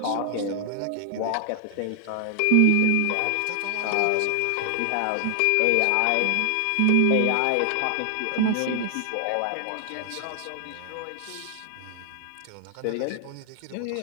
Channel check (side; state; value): both; different; correlation 0.00